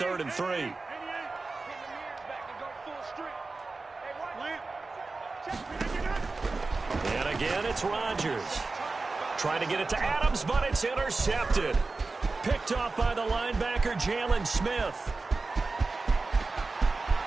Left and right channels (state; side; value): quieter; left; 3.7 dB